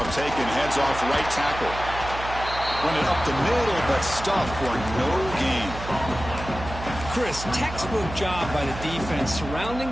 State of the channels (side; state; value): right; noise; hum, 10 dB below the sound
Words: taken, heads off right tackle. Run it up the middle, but stuffed for no gain. Chris, textbook job by the defense surrounding